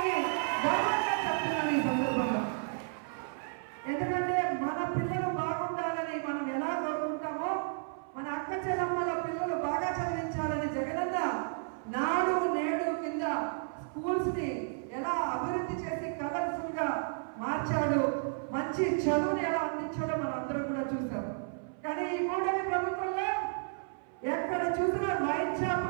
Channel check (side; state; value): left; silent; 56 dB below the other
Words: గౌరవంగా చెప్తున్నాను ఈ సందర్భంగా. ఎందుకంటే మన పిల్లలు బాగుండాలని మనం ఎలా కోరుకుంటామో మన అక్క చెల్లమ్మల పిల్లలు బాగా చదివించాలని జగనన్న నాడు నేడు కింద స్కూల్స్ ని ఎలా అభివృద్ధి చేసి కలర్ఫుల్ గా మార్చాడు, మంచి చదువుని ఎలా అందించాడో మనం అందరూ కూడా చూసాం. కానీ ఈ కూటమి ప్రభుత్వంలో ఎక్కడ చూసినా వైన్